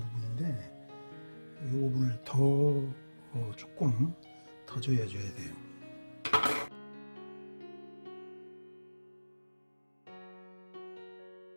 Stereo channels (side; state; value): both; inverted; correlation -1.00